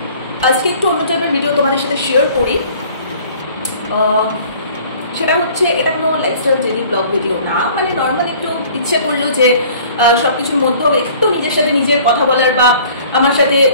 আজকে একটু অন্য টাইপের ভিডিও তোমাদের সাথে শেয়ার করি। সেটা হচ্ছে এটা কোনো লাইফস্টাইল ডেইলি ব্লগ ভিডিও না, মানে নর্মাল একটু ইচ্ছে করলো যে সব কিছুর মধ্যেও একটু নিজের সাথে নিজের কথা বলার বা আমার সাথে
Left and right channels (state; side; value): inverted; both; correlation -0.51